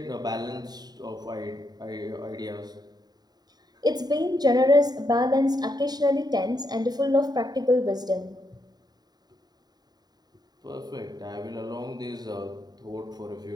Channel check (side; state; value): left; late; 0.20 ms